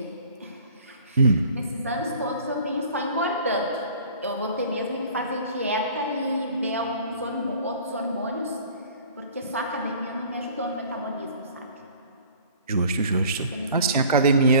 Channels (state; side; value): inverted; both; correlation -0.49